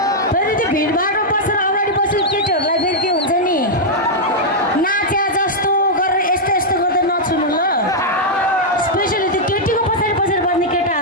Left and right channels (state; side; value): normal; both; correlation -0.05